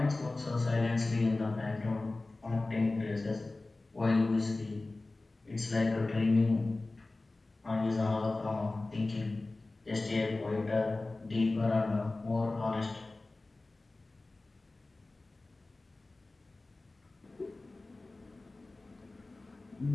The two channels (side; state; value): right; quieter; 3.1 dB